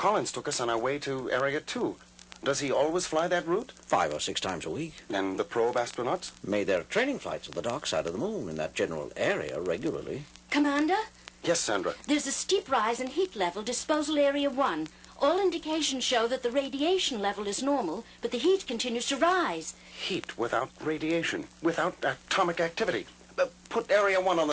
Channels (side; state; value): both; identical; correlation 1.00